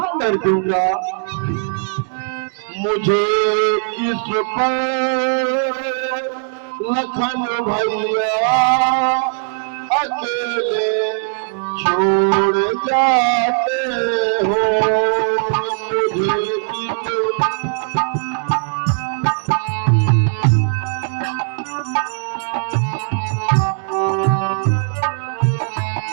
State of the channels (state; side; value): silent; left; digital silence